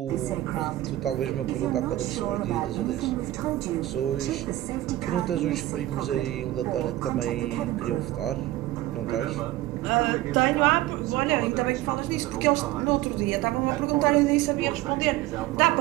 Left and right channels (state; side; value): quieter; left; 16.0 dB